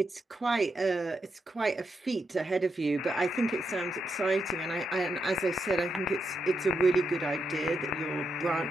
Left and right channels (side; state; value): both; normal; correlation 0.83